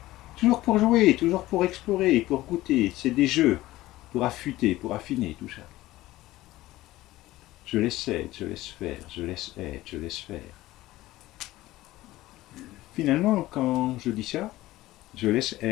Toujours pour jouer, toujours pour explorer, pour goûter. C'est des jeux pour affûter, pour affiner tout ça. Je laisse être, je laisse faire, je laisse être, je laisse faire. Finalement, quand je dis ça, je laisse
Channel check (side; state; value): right; quieter; 16.9 dB